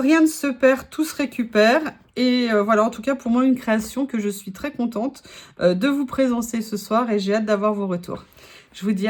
ne se perd, tout se récupère. Et voilà, en tout cas, pour moi, une création que je suis très contente de vous présenter ce soir et j'ai hâte d'avoir vos retours. Je vous dis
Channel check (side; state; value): both; identical; correlation 1.00